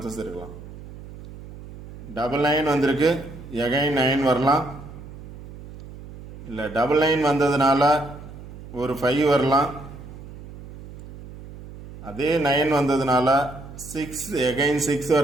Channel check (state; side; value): noise; right; hum, 15 dB below the sound